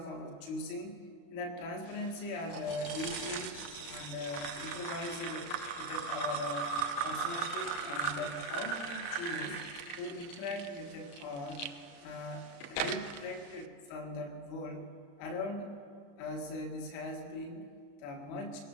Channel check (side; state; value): right; late; 35 ms